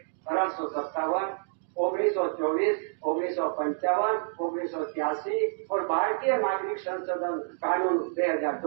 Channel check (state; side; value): silent; left; digital silence